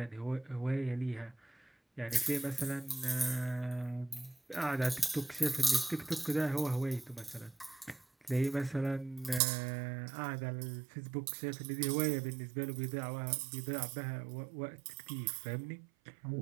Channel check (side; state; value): left; drops out; at 9.4 s